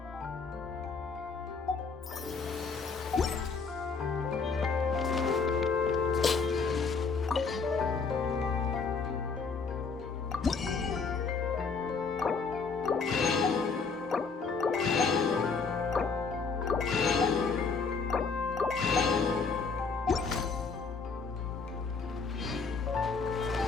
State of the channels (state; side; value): quieter; right; 4.9 dB